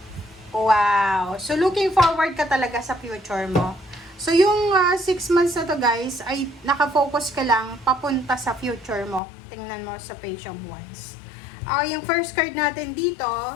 Wow. So, looking forward ka talaga sa future mo. So, yung 6 months na to, guys, ay nakafocus ka lang papunta sa future mo. Tingnan mo sa Page of Wands. Yung first card natin dito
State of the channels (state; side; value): drops out; right; at 9.2 s